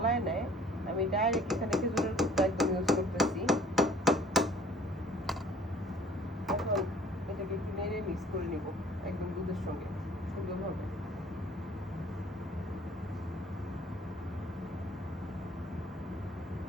নেয়, আমি ডাইরেক্ট এখানে খেজুরের গুড়টা একদম ইউজ করতেছি। এখন এটাকে একটু নেড়ে মিক্স করে নিব একদম দুধের সঙ্গে সুন্দরভাবে।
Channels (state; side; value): normal; both; correlation 0.53